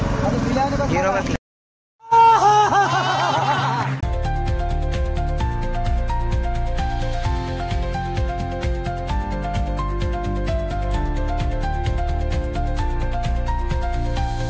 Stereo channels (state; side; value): identical; both; correlation 1.00